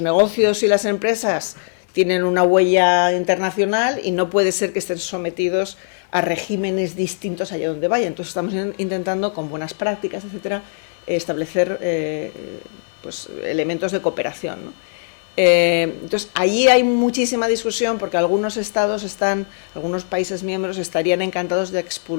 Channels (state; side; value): silent; right; digital silence